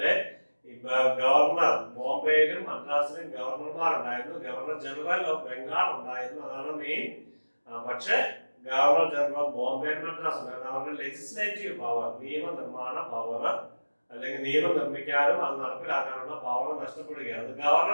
ഗവർണർ ബോംബെയിലും മദ്രാസിലും ഗവർണർമാർ ഉണ്ടായിരുന്നു, ഗവർണർ ജനറൽ ഓഫ് ബംഗാൾ ഉണ്ടായിരുന്നു, അതാണ് മെയിൻ. പക്ഷേ governor general of Bombay and Madras ഉണ്ടായിരുന്നു. അവരുടെ ലെജിസ്ലേറ്റീവ് പവർ, നിയമനിർമ്മാണ പവർ അല്ലെങ്കിൽ നിയമം നിർമ്മിക്കാനും അത് നടപ്പിലാക്കാനുള്ള പവർ നഷ്ടപ്പെടുകയാണ്.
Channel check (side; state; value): both; inverted; correlation -1.00